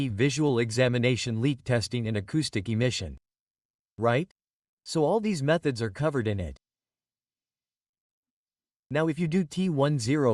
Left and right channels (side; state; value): both; identical; correlation 1.00